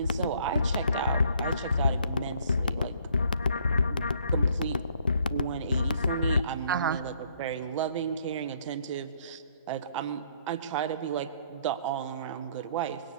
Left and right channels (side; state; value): both; inverted; correlation -0.64